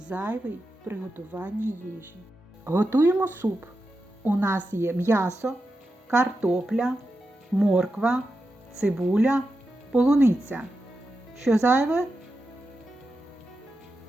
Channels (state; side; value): normal; both; correlation 0.90